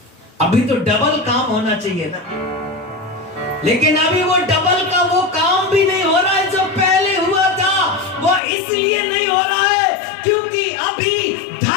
अभी तो डबल काम होना चाहिए ना। लेकिन अभी वो डबल का वो काम भी नहीं हो रहा है जो पहले हुआ था। वो इसलिए नहीं हो रहा है क्योंकि अभी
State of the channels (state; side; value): drops out; right; at 8.4 s